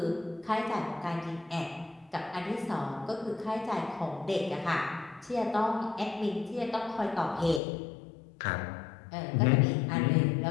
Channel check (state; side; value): drops out; right; at 7.6 s